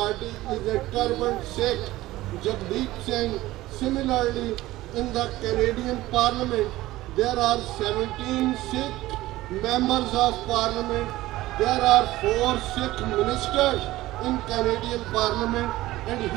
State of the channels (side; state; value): left; quieter; 17.0 dB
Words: is a turbaned Sikh, Jagdeep Singh. Similarly, in the Canadian Parliament, there are 17 Sikh members of Parliament. There are 4 Sikh ministers in Canadian Parliament. And